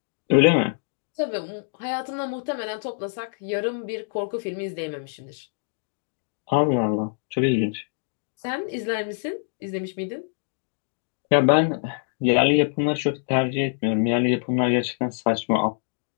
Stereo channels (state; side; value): silent; right; digital silence